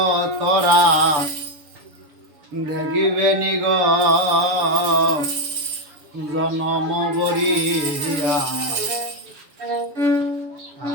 তোরা দেখিবে নিগ জনম বরিয়া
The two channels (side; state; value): left; late; 7.0 ms